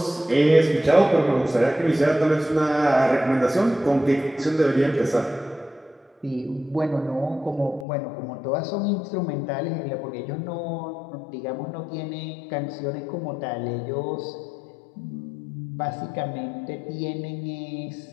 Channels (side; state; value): right; drops out; at 7.9 s